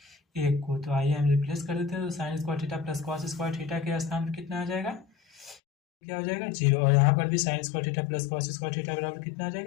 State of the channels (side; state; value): right; drops out; at 5.6 s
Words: 1 को। तो आइए हम रिप्लेस कर देते हैं। तो sign square theta plus cos square theta के स्थान पर कितना आ जाएगा, क्या हो जाएगा, 0। और यहाँ पर भी sign square theta plus cos square theta बराबर कितना आ